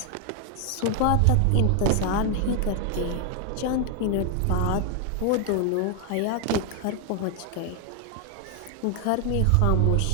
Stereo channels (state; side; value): different; both; correlation 0.01